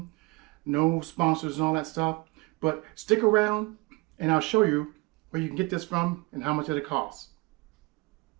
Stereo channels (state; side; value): quieter; left; 25.4 dB